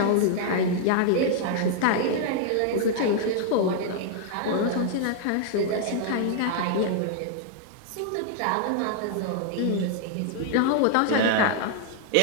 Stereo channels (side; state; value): both; different; correlation 0.00